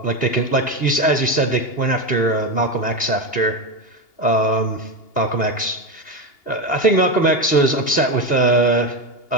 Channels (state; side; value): late; right; 2.8 ms